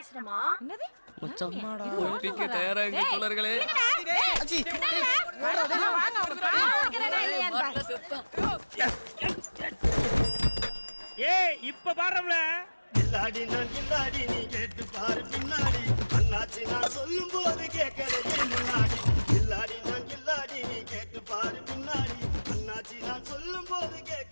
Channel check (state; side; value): inverted; both; correlation -1.00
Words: என்னது? மச்சான் ஒப்பிக்க தயாரா இங்க தோழர்களே. ஆச்சி வாங்க ஒரு பாக்கிறடா இல்லையான்னு பாரு. ஏய் இப்ப பாரும்ல. இல்லாடி நான் இல்லாடி நீ கேட்டு பாரு பின்னாடி, அண்ணாச்சி நான் சொல்லும் போது கேட்கறதே முன்னாடி. இல்லாடி நான் இல்லாடி நீ கேட்டு பாரு பின்னாடி, அண்ணாச்சி நான் சொல்லும் போது